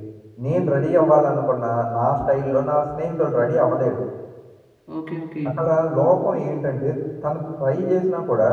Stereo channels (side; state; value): both; identical; correlation 1.00